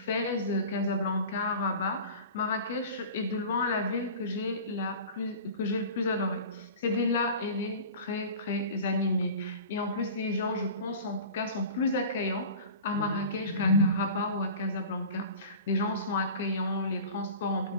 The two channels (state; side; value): inverted; both; correlation -0.37